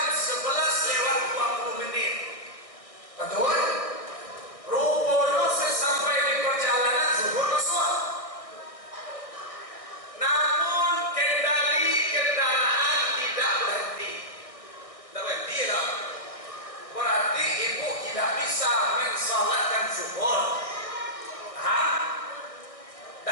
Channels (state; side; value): late; right; 1.6 ms